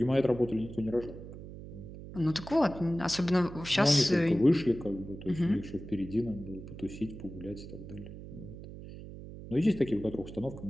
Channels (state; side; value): noise; right; hum, 13 dB below the sound